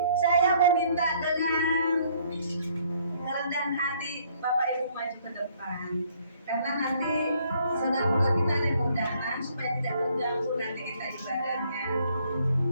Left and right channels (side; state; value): both; inverted; correlation -0.63